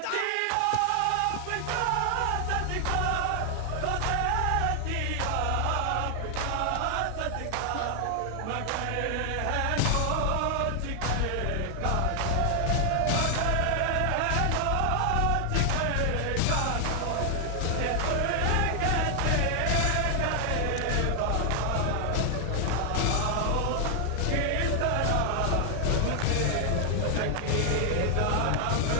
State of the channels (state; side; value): different; both; correlation 0.00